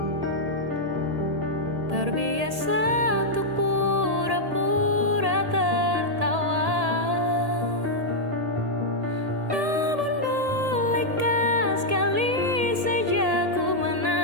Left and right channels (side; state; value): left; late; 1.8 ms